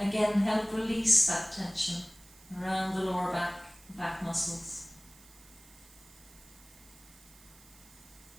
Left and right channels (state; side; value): noise; right; hiss, 23 dB below the sound